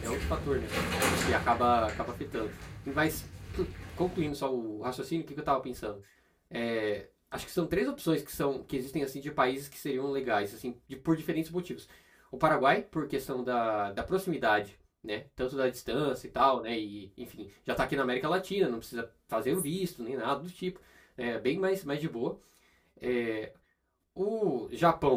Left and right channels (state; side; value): identical; both; correlation 1.00